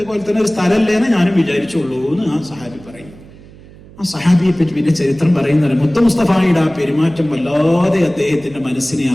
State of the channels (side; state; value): right; noise; hum, 21 dB below the sound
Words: തന്നെ ഒരു സ്ഥലമല്ലേന്ന് ഞാനും വിചാരിച്ചുള്ളൂ എന്ന് ആ സഹാബി പറയും. ആ സഹാബിയെ പറ്റി പിന്നെ ചരിത്രം പറയുന്നത്, മുത്ത മുസ്തഫായുടെ ആ പെരുമാറ്റം വല്ലാതെ അദ്ദേഹത്തിന്റെ മനസ്സിനെ